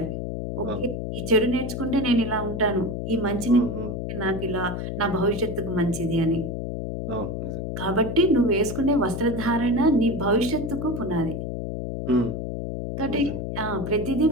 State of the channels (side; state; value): left; noise; hum, 4 dB below the sound